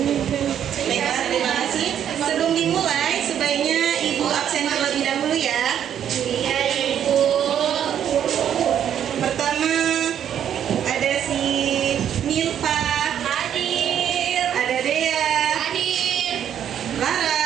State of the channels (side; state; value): left; quieter; 9.5 dB